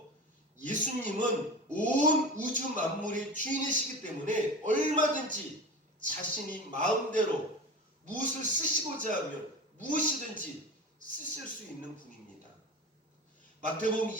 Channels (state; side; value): normal; both; correlation 0.31